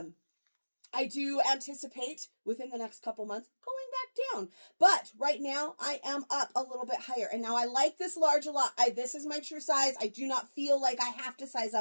I do anticipate within the next couple months going back down. But right now I am up a little bit higher. And now I like this large a lot. This is my true size. I do not feel like I have to size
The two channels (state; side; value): inverted; both; correlation -1.00